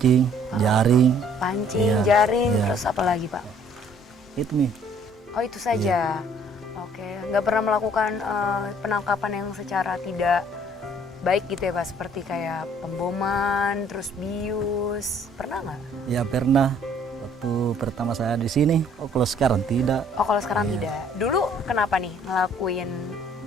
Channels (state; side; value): normal; both; correlation 0.59